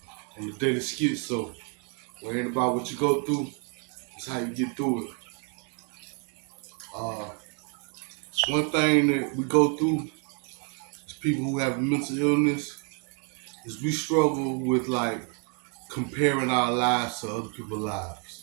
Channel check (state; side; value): quieter; left; 39.0 dB